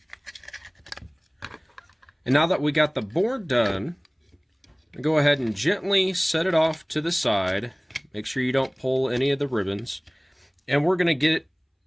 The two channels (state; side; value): identical; both; correlation 1.00